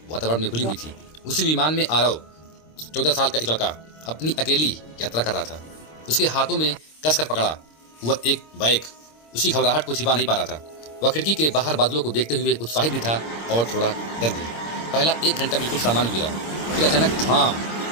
वातावरण में घुली हुई थी। उसी विमान में आरव 14 साल का एक लड़का अपनी अकेली यात्रा कर रहा था। उसके हाथों में कसकर पकड़ा हुआ एक बैग उसकी घबराहट को छिपा नहीं पा रहा था। वह खिड़की के बाहर बादलों को देखते हुए उत्साहित भी था और थोड़ा डर भी। पहला 1 घंटा बिल्कुल सामान्य गुजरा, फिर अचानक धाम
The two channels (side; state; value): right; late; 26 ms